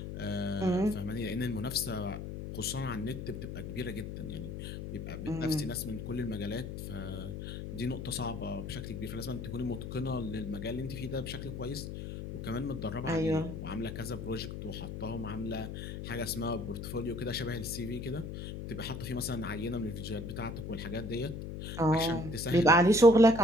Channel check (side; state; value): left; noise; hum, 7 dB below the sound